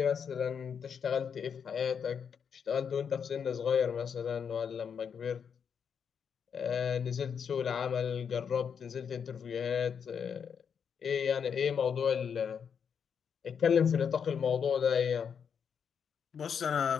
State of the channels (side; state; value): right; quieter; 7.1 dB